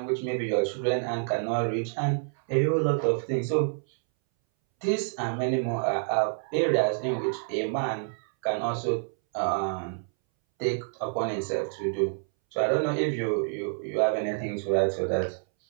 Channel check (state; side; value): silent; left; 59 dB below the other